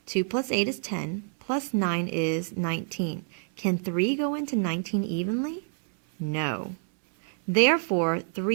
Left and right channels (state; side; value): silent; left; 60 dB below the other